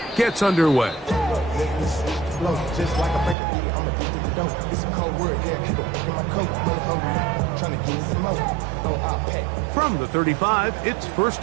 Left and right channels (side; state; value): left; drops out; at 3.4 s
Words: gets underway. From the 35, it's 1st